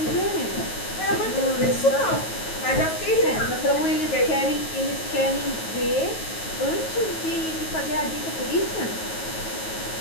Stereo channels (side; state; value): right; late; 9.3 ms